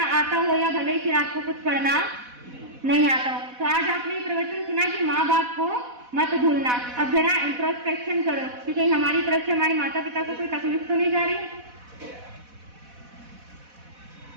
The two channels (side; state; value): left; late; 4.1 ms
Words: आता हो या भले फिर आपको कुछ पढ़ना नहीं आता हो। तो आज आपने प्रवचन सुना कि माँ बाप को मत भूलना। अब जरा इंट्रोस्पेक्शन करो कि कहीं हमारी तरफ से हमारे माता पिता को कोई तकलीफ तो नहीं जा रही।